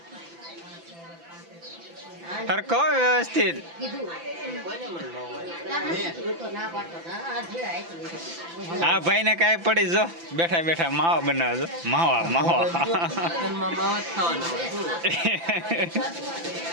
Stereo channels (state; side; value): late; left; 5.9 ms